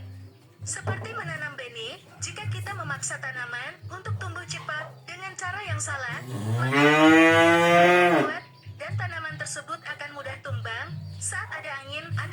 Seperti menanam benih, jika kita memaksa tanaman untuk tumbuh cepat dengan cara yang salah, maka kuat dan tanaman tersebut akan mudah tumbang saat ada angin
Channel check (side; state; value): both; identical; correlation 1.00